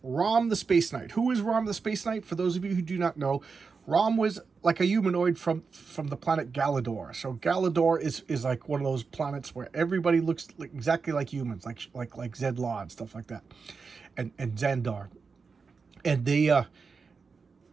Rom the Space Knight. Who is Rom the Space Knight? For those of you who do not know, Rom was like a humanoid from the planet Galador. So Galador is like one of those planets where everybody looks exactly like humans, like Zed Law and stuff like that, and Xandar. And they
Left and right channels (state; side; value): quieter; left; 5.0 dB